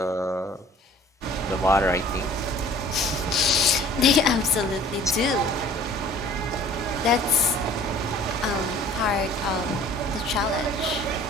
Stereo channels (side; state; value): both; normal; correlation 0.50